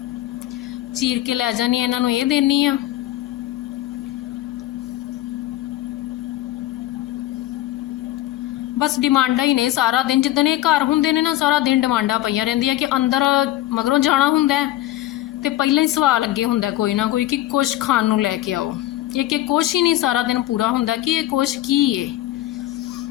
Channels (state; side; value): quieter; right; 15.0 dB